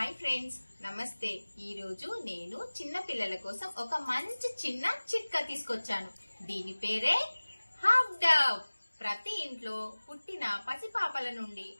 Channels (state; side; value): inverted; both; correlation -1.00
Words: ఫ్రెండ్స్, నమస్తే. ఈ రోజు నేను చిన్న పిల్లల కోసం ఒక మంచి చిన్న చిట్కా తీసుకొచ్చాను. దీని పేరే హాఫ్ డబ్. ప్రతి ఇంట్లో పుట్టిన పసిపాపల నుండి